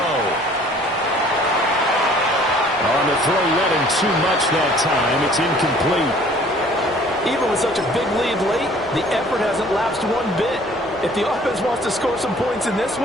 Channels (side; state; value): both; normal; correlation 0.54